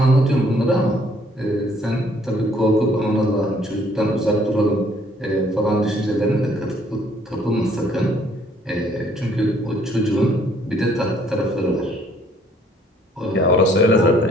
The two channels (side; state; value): both; normal; correlation 0.63